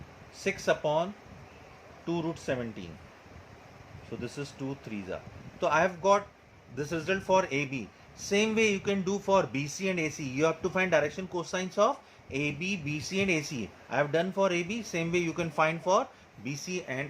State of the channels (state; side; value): identical; both; correlation 1.00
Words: 6 upon 2 root 17. So this is 2 3s are. So I have got this result for AB. Same way you can do for BC and AC. You have to find direction cosines of AB, BC and AC. I have done for AB. Same way you can find for BC and